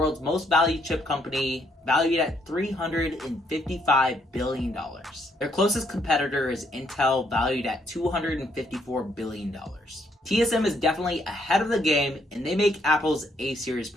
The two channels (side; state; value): both; normal; correlation 0.71